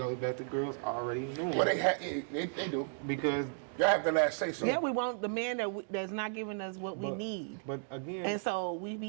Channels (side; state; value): left; silent; digital silence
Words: back to girls already knowing. Well, they do. Because Y'all have the last say so. Yeah, we want the man that's not giving us what we need. But again, And so we